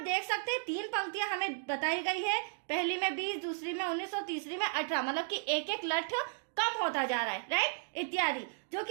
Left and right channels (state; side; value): silent; left; digital silence